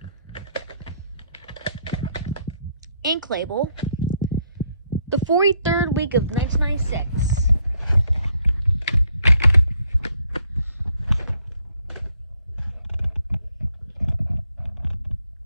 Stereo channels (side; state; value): both; inverted; correlation -0.71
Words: Ink label. The 43rd week of 1996.